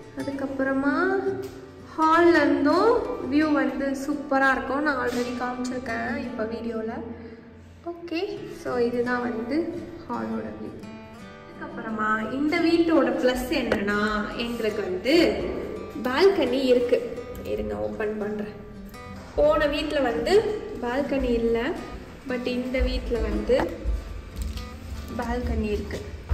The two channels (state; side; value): identical; both; correlation 1.00